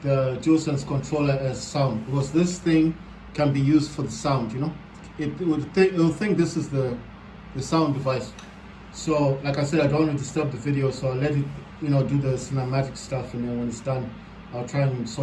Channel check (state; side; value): identical; both; correlation 1.00